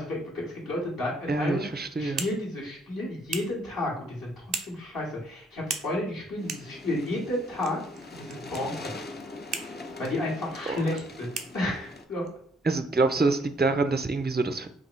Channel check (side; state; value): both; normal; correlation 0.66